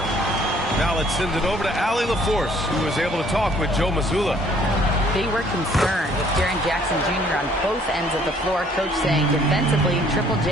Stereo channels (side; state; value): both; normal; correlation 0.60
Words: Now let's send it over to Allie LaForce, who was able to talk with Joe Mazzulla. They were concerned with Jaren Jackson Jr. on both ends of the floor. Coach saying defensively, Triple